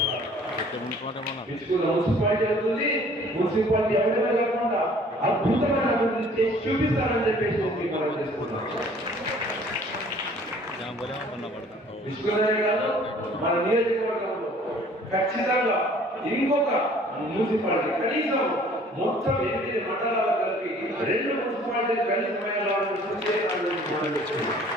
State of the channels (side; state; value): both; normal; correlation 0.54